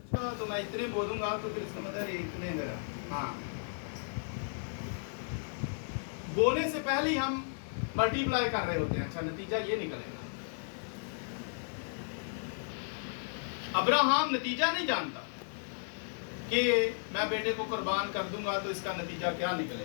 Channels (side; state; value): right; silent; digital silence